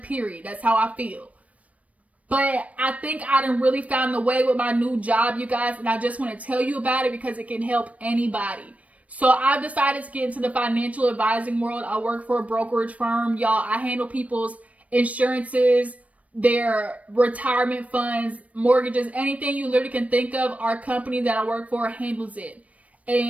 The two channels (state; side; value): late; left; 0.067 ms